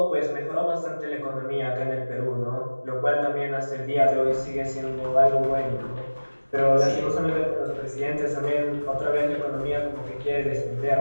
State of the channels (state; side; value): inverted; both; correlation -1.00